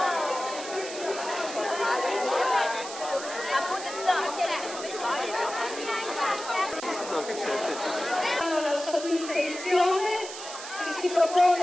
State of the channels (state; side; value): noise; right; hiss, 10 dB below the sound